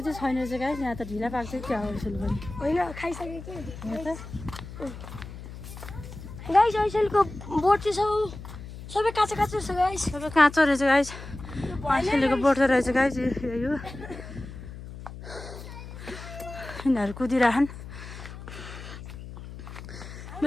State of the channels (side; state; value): left; noise; hum, 12 dB below the sound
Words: चाहिँ छैन चाहिँ गाइस यहाँ त ढिला पाक्छ क्या हो यसो पनि होइन खाइसके कि गाइस ऐसेलको बोट चाहिँ सबै काँचो काँचो छ गाइस सबै काँचो रहेछ गाइस ऐसेलको बोट रहेछ गाइस यो यिनीहरू कुदिरहन्